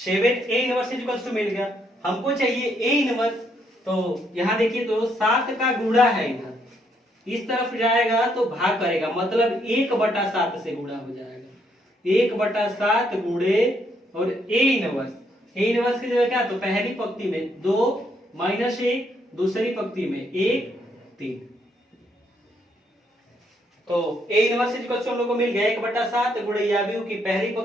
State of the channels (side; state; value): both; normal; correlation 0.73